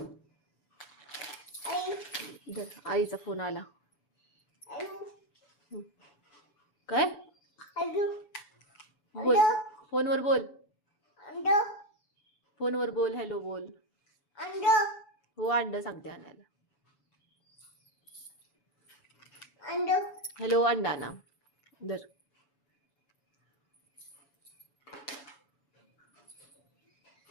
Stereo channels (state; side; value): late; right; 7.0 ms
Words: आई धर, आईचा फोन आला. आई काय आई बोल, फोनवर बोल, अंड फोनवर बोल, हॅलो बोल. अंड हो अंड सांगते आणायला. अंड हॅलो अंडा ना धर.